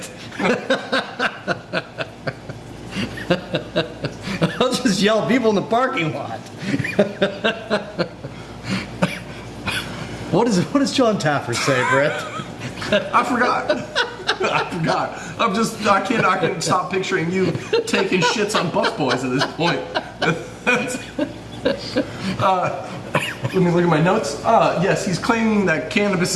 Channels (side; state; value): both; identical; correlation 1.00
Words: I'll just yell at people in the parking lot. What does John Taffer say, Brett? I forgot. I can't stop picturing you taking shits on busboys at this point. Let me look at my notes. Yes, he's claiming that cannabis